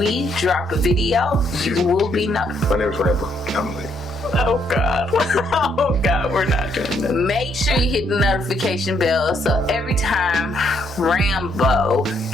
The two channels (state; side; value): normal; both; correlation 0.72